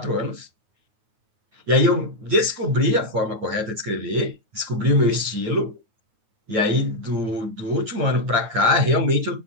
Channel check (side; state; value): left; late; 9.4 ms